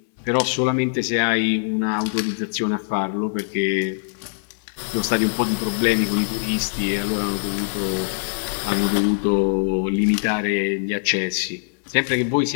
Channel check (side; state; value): right; silent; digital silence